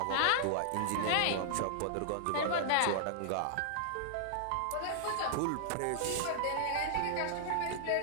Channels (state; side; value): different; both; correlation -0.01